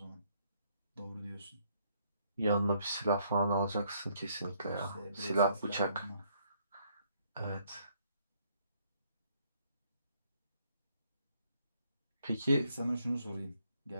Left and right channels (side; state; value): both; inverted; correlation -0.68